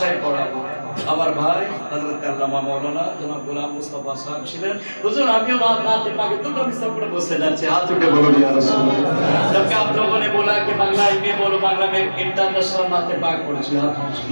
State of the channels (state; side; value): inverted; both; correlation -1.00